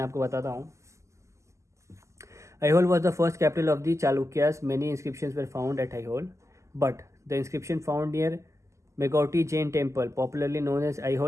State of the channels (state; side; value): late; left; 0.14 ms